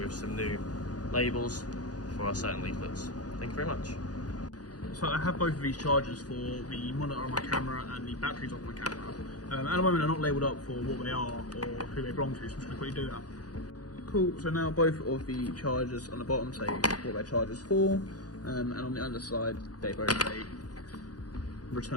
some new labels for our certain leaflets. Thank you very much. So I have both of these chargers for the monitor on my camera and the batteries on my camera. At the moment they're not labelled up for what they are or who they belong to, so I'm just going to quickly do that. Cool, so now both of the chargers on the bottom say what their charger's for, and on the underside they both say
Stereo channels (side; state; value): right; late; 0.68 ms